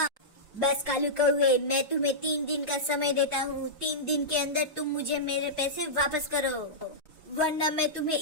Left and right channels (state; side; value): normal; both; correlation -0.13